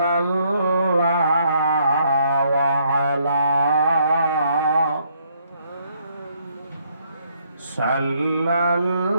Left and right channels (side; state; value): both; inverted; correlation -0.69